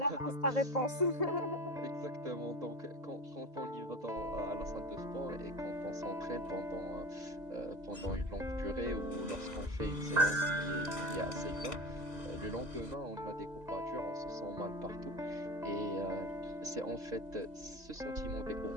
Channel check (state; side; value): late; left; 2.0 ms